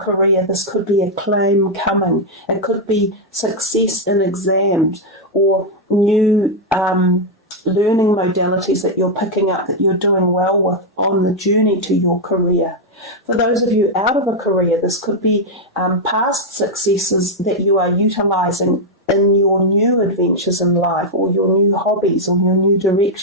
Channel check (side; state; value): both; normal; correlation -0.01